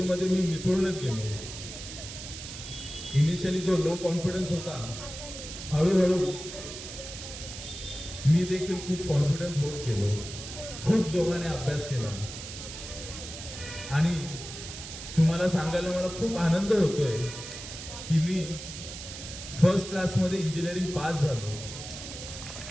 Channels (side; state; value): right; noise; hiss, 10 dB below the sound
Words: मी मिसळूनच गेलो. इनिशियली जो लो कॉन्फिडन्स होता, हळूहळू मी देखील खूप कॉन्फिडन्स होत गेलो. खूप जोमाने अभ्यास केला आणि तुम्हाला सांगायला मला खूप आनंद होतोय की मी फर्स्ट क्लासमध्ये इंजिनिअरिंग पास झालो.